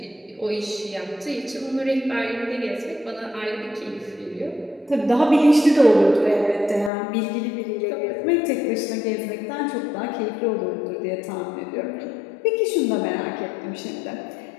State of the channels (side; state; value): right; drops out; at 6.9 s